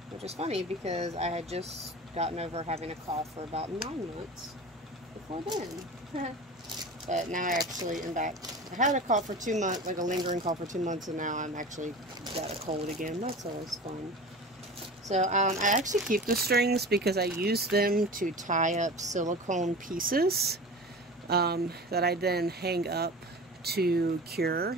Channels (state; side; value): normal; both; correlation 0.34